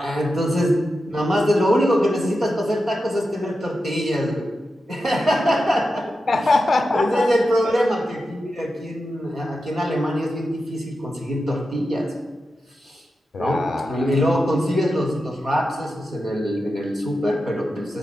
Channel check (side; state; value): both; normal; correlation 0.90